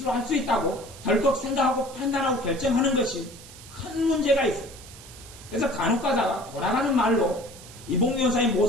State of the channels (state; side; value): noise; right; hiss, 18 dB below the sound